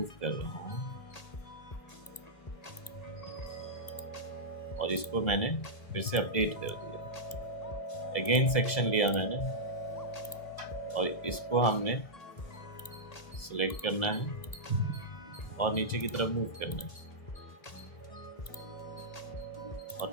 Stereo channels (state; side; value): late; right; 1.7 ms